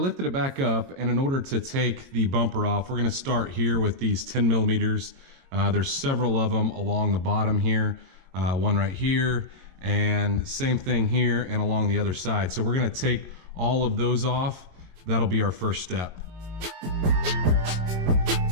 it back up, and in order to take the bumper off, we're going to start here with these 10 millimeters. There's several of them along the bottom here, one right here, and same thing here and along the other side. So we're going to take all of those off. That'll be our first step.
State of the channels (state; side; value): late; left; 22 ms